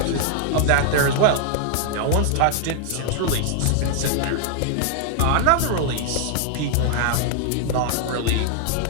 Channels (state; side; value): different; both; correlation -0.01